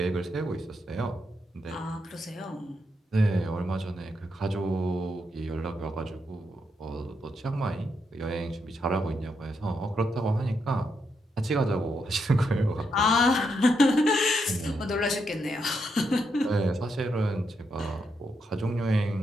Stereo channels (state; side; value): normal; both; correlation 0.80